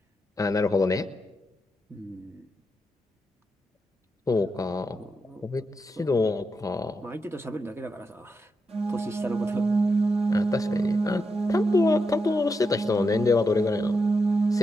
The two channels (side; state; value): both; normal; correlation 0.85